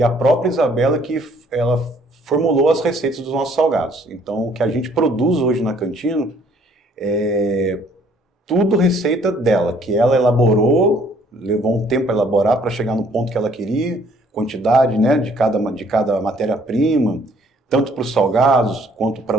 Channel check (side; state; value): both; normal; correlation 0.61